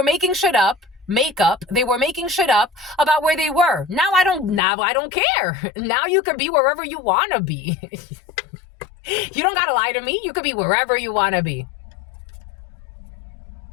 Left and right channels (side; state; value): right; drops out; at 4.6 s